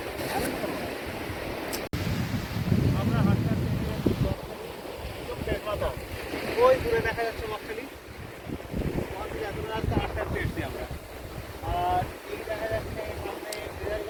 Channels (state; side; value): identical; both; correlation 1.00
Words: আমরা হাঁটতে হাঁটতে ওই দূরে দেখা যাচ্ছে বকখালি, রাস্তা হাঁটতে হাঁটতে এসছি আমরা। আর এই দেখা যাচ্ছে সামনে